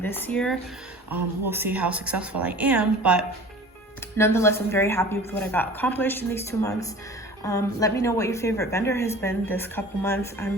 this year. We'll see how successful I am, but nonetheless, I'm very happy with what I got accomplished in these 2 months. Let me know what your favorite vendor has been this couple months.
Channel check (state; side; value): normal; both; correlation 0.42